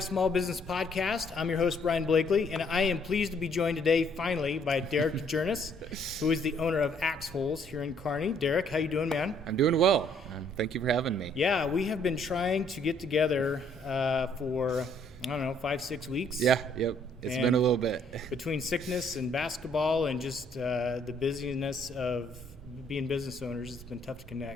Small Business Podcast. I'm your host, Brian Blakely, and I am pleased to be joined today, finally, by Derek Djernes, who is the owner of Axe Holes here in Kearney. Derek, how you doing, man? I'm doing well. Thank you for having me. Yeah, we have been trying to get together for, 5-6 weeks. Yep. It's been a little bit. Between sickness and basketball and just the busyness of being business owners, it's been tough to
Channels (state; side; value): normal; both; correlation 0.65